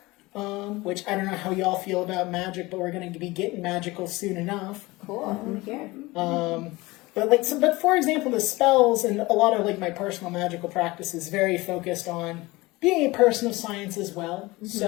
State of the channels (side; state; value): right; quieter; 21.4 dB